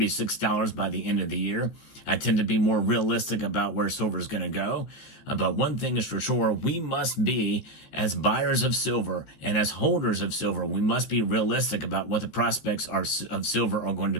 by the end of the year. I tend to be more realistic about where silver is going to go. But one thing is for sure, we must be, as buyers of silver and as holders of silver, we must be realistic about what the prospects of silver are going to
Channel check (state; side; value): late; right; 15 ms